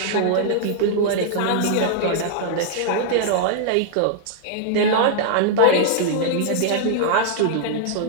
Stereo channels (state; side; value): different; both; correlation -0.01